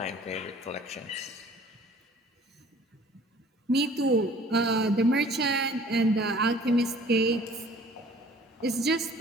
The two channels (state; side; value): normal; both; correlation 0.52